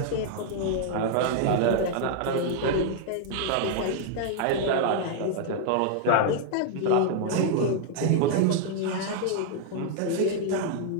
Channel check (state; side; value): different; both; correlation 0.00